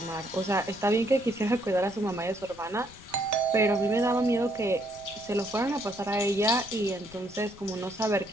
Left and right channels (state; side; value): noise; left; rumble, 22 dB below the sound